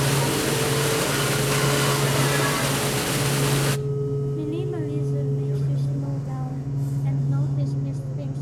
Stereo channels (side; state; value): both; identical; correlation 1.00